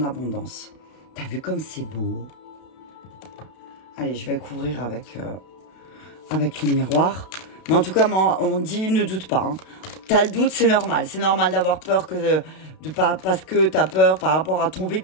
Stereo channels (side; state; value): right; late; 32 ms